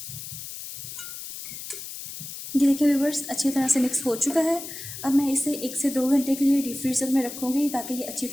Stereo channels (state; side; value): noise; left; hiss, 10 dB below the sound